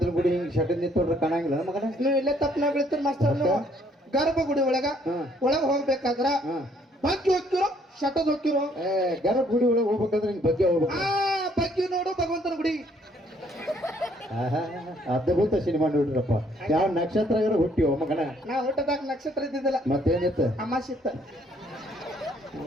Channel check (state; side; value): normal; both; correlation 0.65